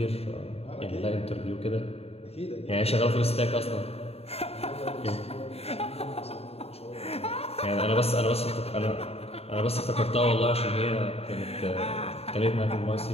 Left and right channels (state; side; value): late; right; 0.29 ms